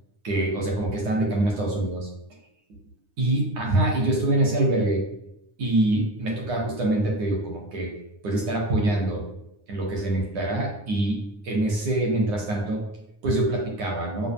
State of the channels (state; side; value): late; left; 9.7 ms